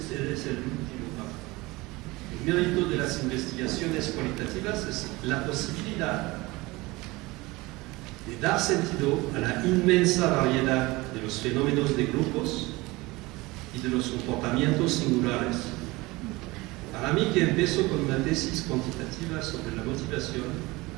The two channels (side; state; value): left; quieter; 21.9 dB